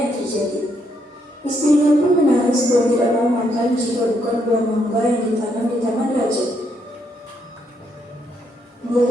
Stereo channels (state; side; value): normal; both; correlation 0.75